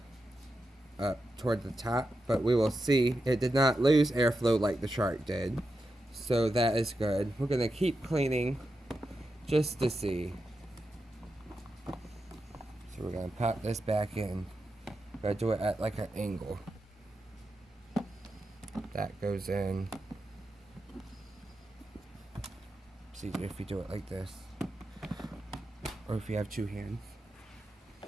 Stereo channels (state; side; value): normal; both; correlation 0.88